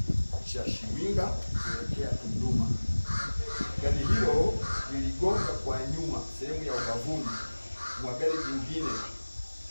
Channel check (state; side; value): inverted; both; correlation -1.00